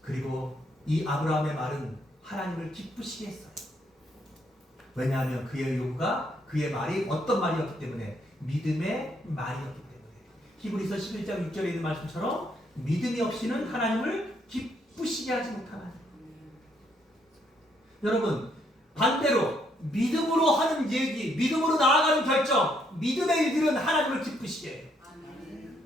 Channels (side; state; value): both; normal; correlation 0.72